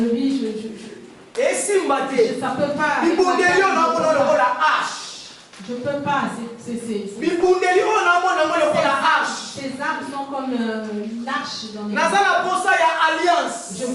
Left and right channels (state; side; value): identical; both; correlation 1.00